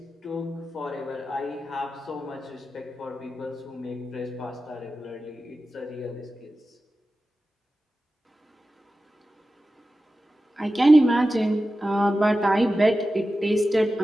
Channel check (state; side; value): normal; both; correlation 0.93